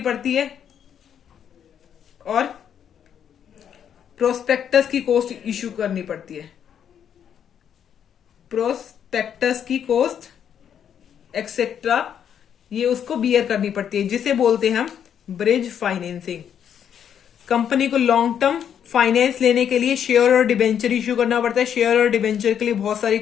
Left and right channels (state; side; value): quieter; right; 8.8 dB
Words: पड़ती है, और प्रोस्पेक्टस की कॉस्ट इश्यू करनी पड़ती है, प्रोस्पेक्टस की कॉस्ट एक्सेट्रा ये उसको बियर करनी पड़ती है, जिसे बोलते हैं हम ब्रिज फाइनेंसिंग। कंपनी को लॉन्ग टर्म फाइनेंस लेने के लिए शेयर और डिबेंचर इश्यू करना पड़ता है। शेयर और डिबेंचर के लिए बहुत सारी